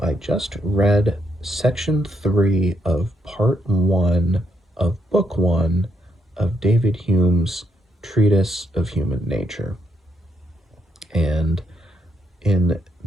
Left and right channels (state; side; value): normal; both; correlation 0.76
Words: I just read section 3 of part 1 of book 1 of David Hume's Treatise of Human Nature. And in